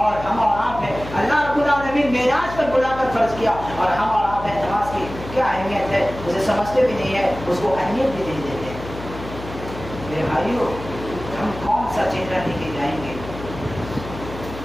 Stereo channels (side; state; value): left; noise; hum, 12 dB below the sound